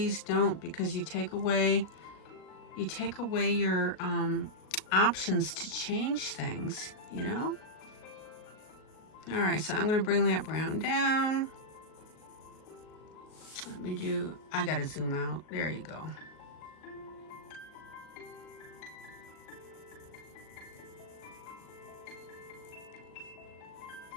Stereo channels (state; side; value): late; right; 38 ms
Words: don't, because you take away your options to change things, you know? All right, so I'm going to bring that brown down. Let me do, I gotta zoom out. There you go.